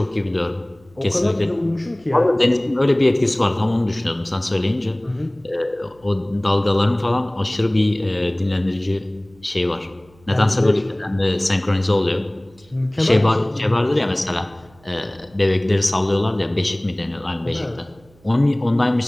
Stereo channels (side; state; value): right; noise; hum, 29 dB below the sound